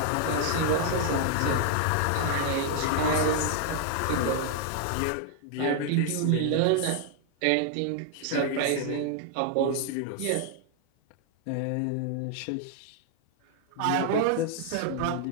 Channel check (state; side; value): different; both; correlation 0.00